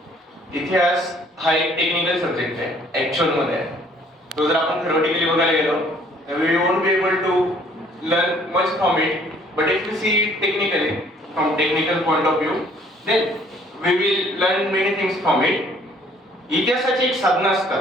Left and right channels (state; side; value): normal; both; correlation 0.59